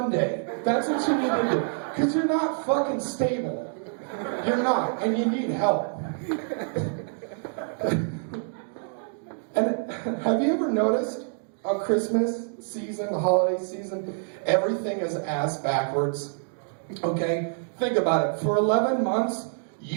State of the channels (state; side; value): silent; left; 60 dB below the other